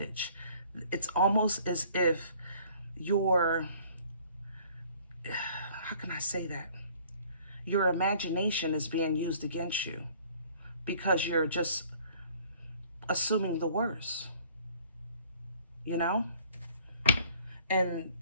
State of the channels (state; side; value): inverted; both; correlation -0.55